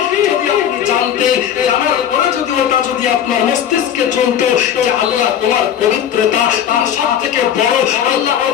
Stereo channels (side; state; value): right; quieter; 9.6 dB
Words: যদি আপনি জানতেন, জানার পরে যদি ওটা যদি আপনার মস্তিষ্কে চলতো যে আল্লাহ তোমার পবিত্রতা তার সবথেকে বড়, আল্লাহ